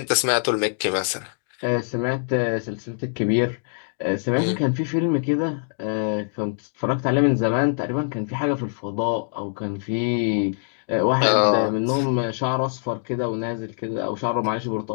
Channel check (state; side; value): silent; right; digital silence